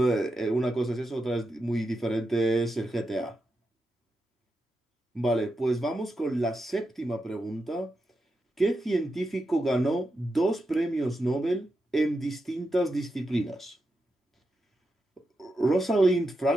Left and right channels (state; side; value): normal; both; correlation 0.87